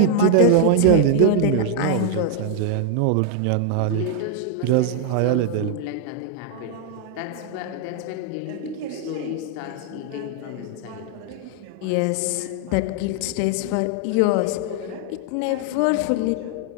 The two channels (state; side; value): different; both; correlation 0.00